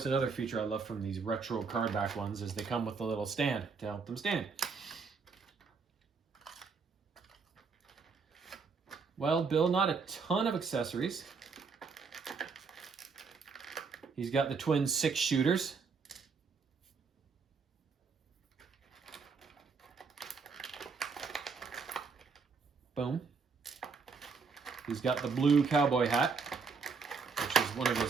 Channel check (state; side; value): quieter; left; 5.1 dB